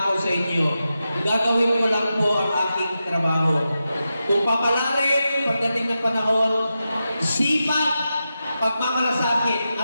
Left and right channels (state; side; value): inverted; both; correlation -0.90